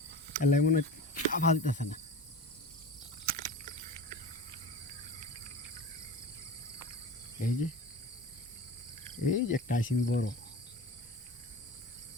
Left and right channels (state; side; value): normal; both; correlation 0.32